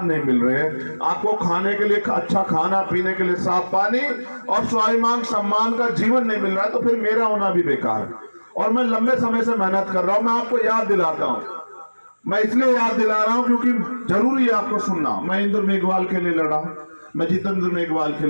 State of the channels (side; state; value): both; inverted; correlation -1.00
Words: नहीं मिल रहे हैं, आपको खाने के लिए अच्छा खाना, पीने के लिए साफ पानी और स्वाभिमान सम्मान का जीवन नहीं मिल रहा है, तो फिर मेरा होना भी बेकार है। और मैं लंबे समय से मेहनत कर रहा हूं। मैं आपको याद दिलाता हूं, मैं इसलिए याद दिला रहा हूं क्योंकि जरूरी है आपको सुनना। मैं इंद्र मेघवाल के लिए लड़ा, मैं जितेंद्र मेघवाल के